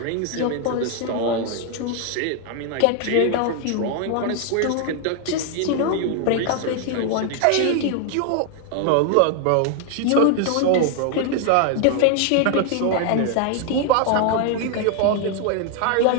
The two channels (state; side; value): different; both; correlation 0.00